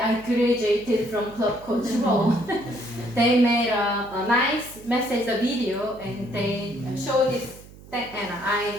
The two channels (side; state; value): right; noise; hum, 20 dB below the sound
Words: graduated from club coach role. They made a nice message, a video, and they showed this thing, and